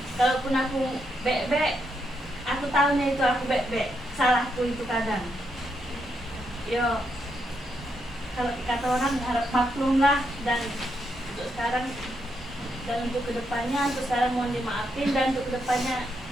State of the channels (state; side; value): normal; both; correlation 0.80